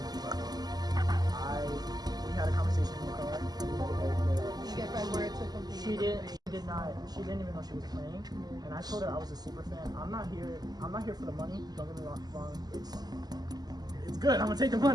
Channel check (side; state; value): left; late; 0.20 ms